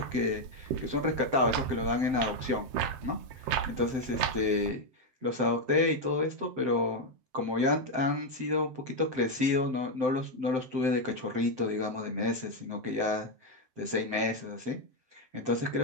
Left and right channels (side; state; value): left; late; 7.8 ms